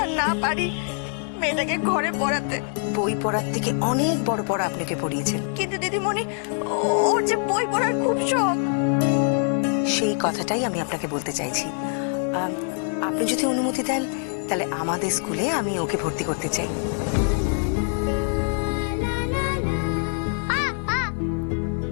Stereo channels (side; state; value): right; silent; 55 dB below the other